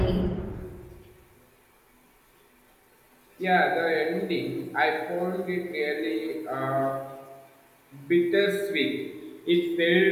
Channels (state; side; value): identical; both; correlation 1.00